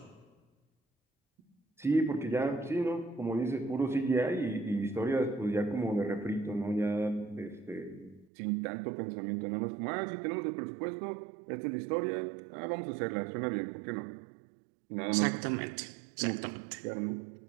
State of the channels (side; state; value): left; drops out; at 8.2 s